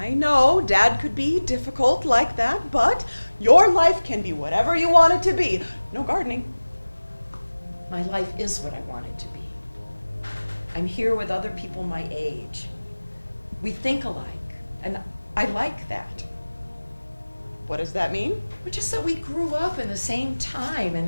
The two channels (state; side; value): inverted; both; correlation -1.00